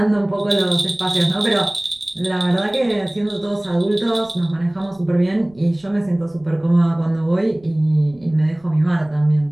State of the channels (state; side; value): noise; right; rumble, 29 dB below the sound